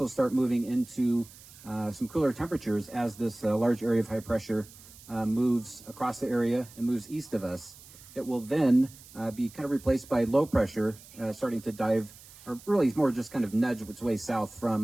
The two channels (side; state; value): right; noise; hiss, 21 dB below the sound